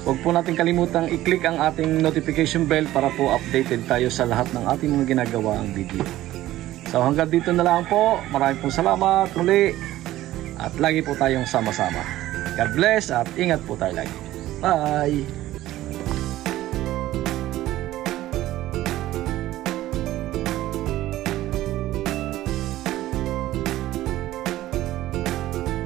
huwag po natin kalimutang i-click ang ating notification bell para po updated tayo sa lahat ng ating mga ginagawa ang video. So hanggang dito na lang po. Maraming pong salamat muli. At lagi po tayong sama-sama. God bless at ingat po tayo lagi. Bye!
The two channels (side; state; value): left; quieter; 15.0 dB